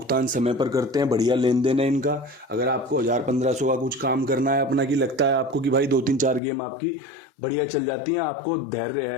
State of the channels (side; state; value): right; drops out; at 6.4 s